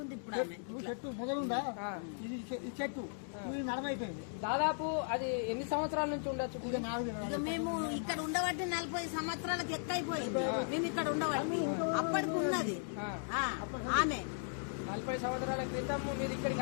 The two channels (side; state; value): right; silent; digital silence